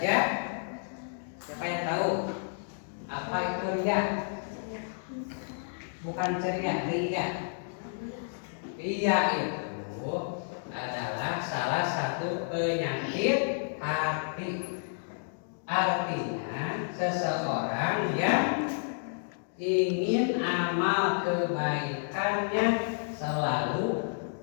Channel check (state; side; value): silent; right; digital silence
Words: Siapa yang tahu apa itu riya? Bukan ceria, riya. Riya itu adalah salah satu penyakit hati. Artinya seseorang yang ingin amal kebaikannya selalu